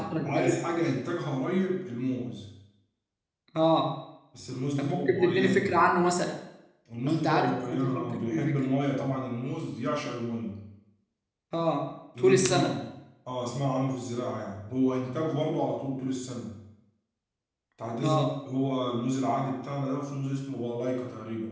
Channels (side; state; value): both; identical; correlation 1.00